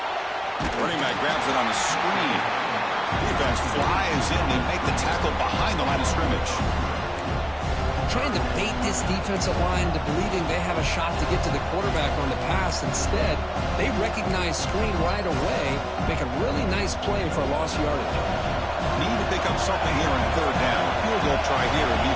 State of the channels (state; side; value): identical; both; correlation 1.00